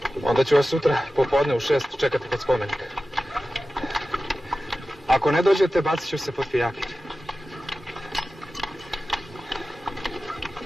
Onda ću vas sutra popodne u 6 čekati kod spomenika. Ako ne dođete, bacit ću se pod pijaker.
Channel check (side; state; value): both; normal; correlation 0.95